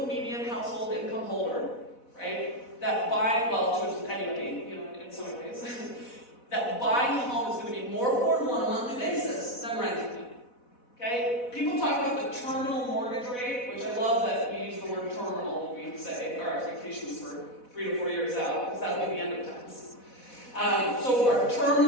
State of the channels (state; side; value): late; right; 4.1 ms